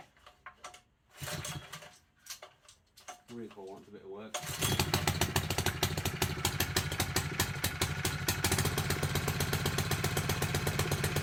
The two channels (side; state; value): both; identical; correlation 1.00